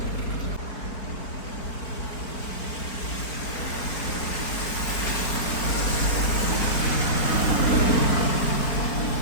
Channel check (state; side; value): late; right; 4.2 ms